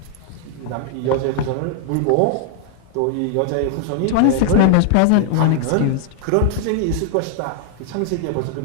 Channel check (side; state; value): both; different; correlation 0.00